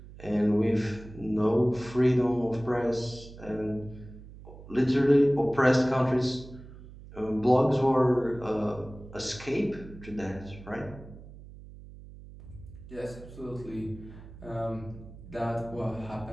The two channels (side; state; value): right; noise; hum, 17 dB below the sound